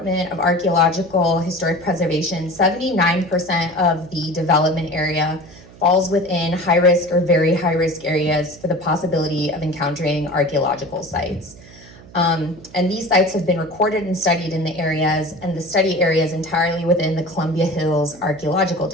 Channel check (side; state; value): right; noise; hum, 21 dB below the sound